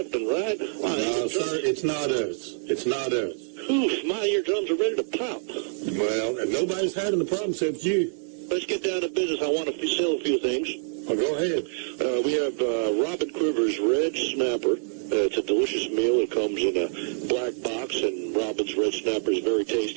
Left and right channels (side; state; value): left; silent; digital silence